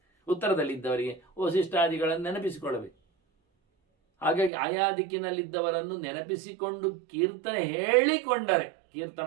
ಉತ್ತರದಲ್ಲಿದ್ದವರಿಗೆ ವಸಿಷ್ಠಾದಿಗಳನ್ನು ನೆನಪಿಸಿಕೊಳ್ಳಬೇಕು. ಹಾಗಾಗಿ ಆಯಾ ದಿಕ್ಕಿನಲ್ಲಿದ್ದವರನ್ನು ನೆನಪಿಸಿಕೊಂಡು ಕೀರ್ತನೆ ಹೇಳಿಕೊಂಡರೆ, ಕೀರ್ತನ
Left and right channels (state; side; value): drops out; left; at 4.5 s